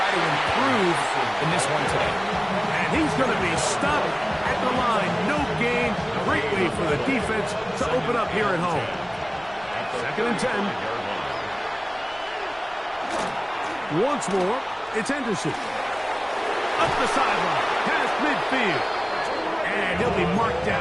to improve in this one today. And he's going to be stopped at the line. No gain. Great way for the defense to open up here at home. 2nd and 10. Once more, it's Henderson. Up the sideline, past midfield. And he'll be marked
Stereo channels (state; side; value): noise; left; rumble, 28 dB below the sound